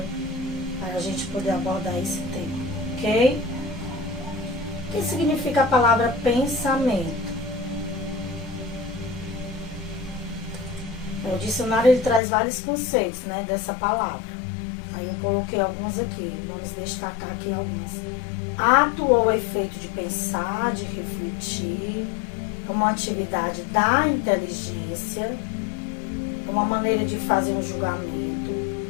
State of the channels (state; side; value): drops out; right; at 12.2 s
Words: para a gente poder abordar esse tema, ok? O que significa a palavra pensamento? O dicionário ele traz vários conceitos, né, dessa palavra. Aí eu coloquei alguns aqui, vamos destacar aqui alguns. Ato ou efeito de pensar, de refletir, uma atividade da inteligência, uma maneira de fazer um julgamento,